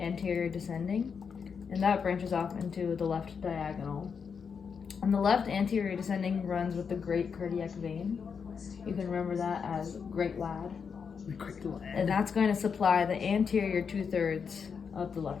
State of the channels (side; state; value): right; quieter; 6.2 dB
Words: descending, and that branches off into the left diagonal. And the left anterior descending runs with the great cardiac vein. You can remember that as great lad. And that's going to supply the anterior 2/3 of the